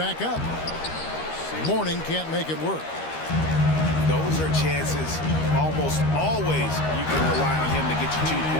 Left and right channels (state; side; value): late; right; 13 ms